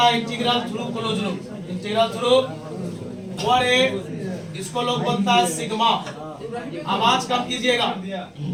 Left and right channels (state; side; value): identical; both; correlation 1.00